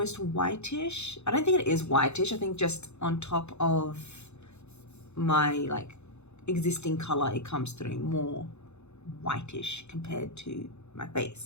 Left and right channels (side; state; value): right; late; 0.81 ms